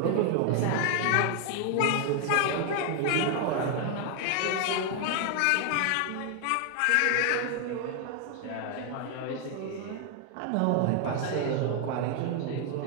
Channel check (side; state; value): both; different; correlation 0.00